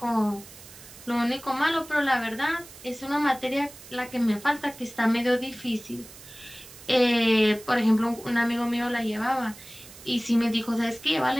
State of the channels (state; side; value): noise; right; hiss, 18 dB below the sound